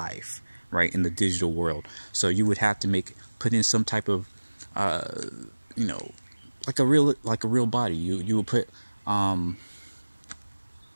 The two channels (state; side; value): inverted; both; correlation -1.00